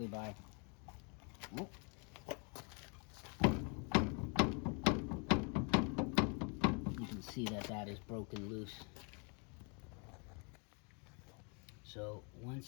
by you can see that is broken loose. So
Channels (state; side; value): quieter; right; 35.3 dB